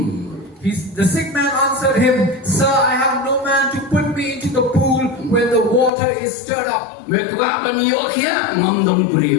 The sick man answered him, Sir, I have no man to put me into the pool when the water is stirred up. Mekwapan yo kya ngamdon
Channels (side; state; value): right; drops out; at 5.9 s